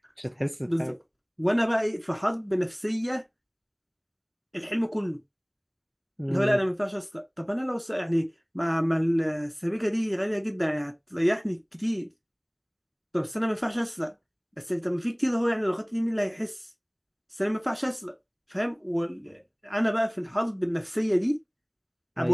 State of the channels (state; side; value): identical; both; correlation 1.00